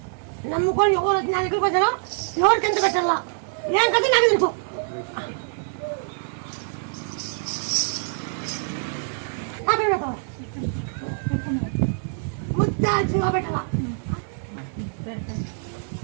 నమ్ముకొని ఎవరు నా దగ్గరికి వచ్చారో ఎవరికి ఎంత పెట్టాలా ఏం కదా నాకు తెలుసు ముద్దా పెట్టాలా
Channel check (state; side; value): silent; left; 62 dB below the other